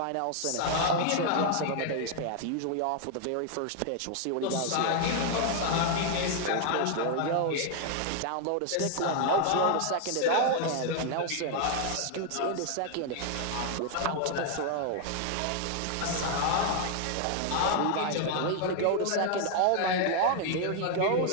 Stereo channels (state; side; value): different; both; correlation 0.00